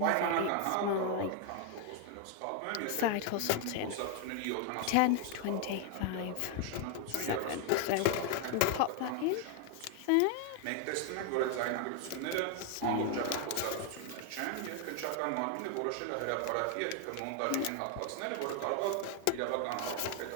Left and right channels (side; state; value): both; different; correlation 0.00